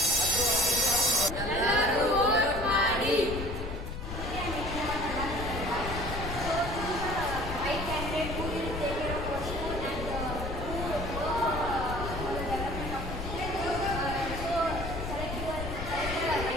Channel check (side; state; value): left; noise; rumble, 6 dB below the sound